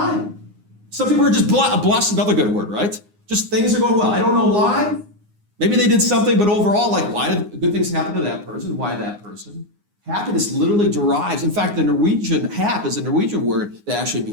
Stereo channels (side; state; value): left; late; 9.6 ms